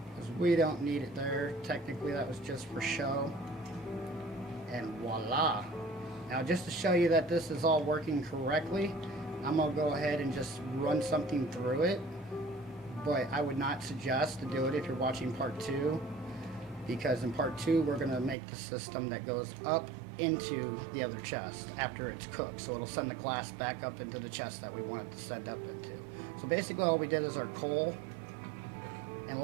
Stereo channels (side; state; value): left; drops out; at 18.4 s